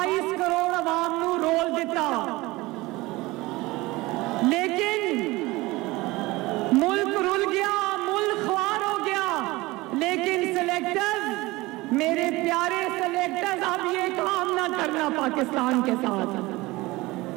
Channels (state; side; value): quieter; left; 20.9 dB